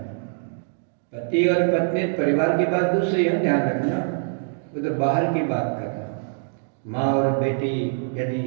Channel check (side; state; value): left; silent; digital silence